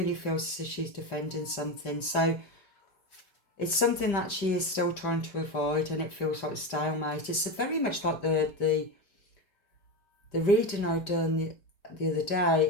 feels as if she's defending something. So it's something that she is still trying to avoid, and it feels like a stalemate. It's very much like the reading I'd done the other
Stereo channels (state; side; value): late; right; 5.1 ms